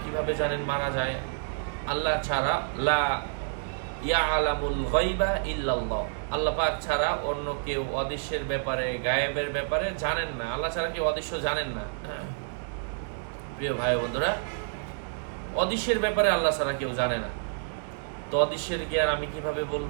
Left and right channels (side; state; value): left; silent; digital silence